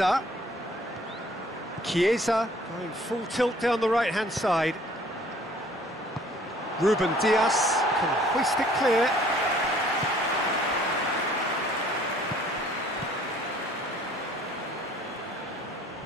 Chiesa going full tilt down the right-hand side. Ruben Dias can hoist it clear.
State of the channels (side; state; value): both; normal; correlation 0.56